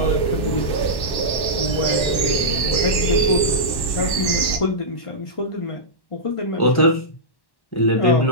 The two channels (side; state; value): right; late; 1.1 ms